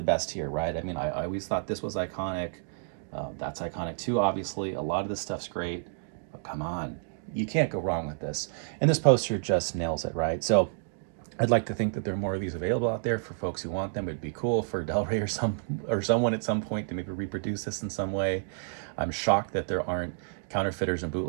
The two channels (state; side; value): silent; left; digital silence